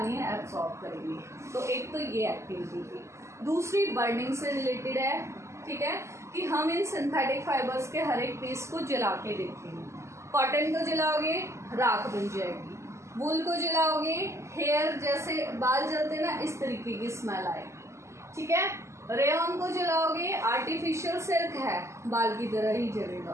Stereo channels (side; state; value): left; late; 0.13 ms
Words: एब्जॉर्ब करेंगे। तो एक तो ये एक्टिविटी थी। दूसरी बर्निंग से रिलेटेड है, ठीक है, कि हम इन सिंथेटिक फाइबर्स के हर एक पीस को जला के देखेंगे। कॉटन को जलाओगे राख बन जाएगी, वूल को जलाओगे हेयर जैसे बाल जलते ना इस तरीके की स्मेल आएगी, ठीक है। रेयन को जलाओगे आर्टिफिशियल सिल्क है, बाल की तरह ही